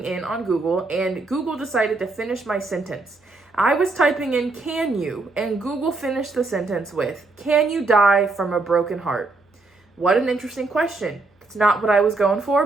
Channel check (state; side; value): quieter; left; 3.4 dB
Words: in on Google, and Google decided to finish my sentence. I was typing in, "can you?" and Google finished the sentence with, "Can you die from a broken heart?" What an interesting question. It's not what I was going for,